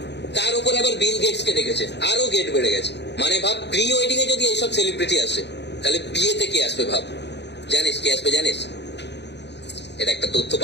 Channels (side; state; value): right; late; 0.50 ms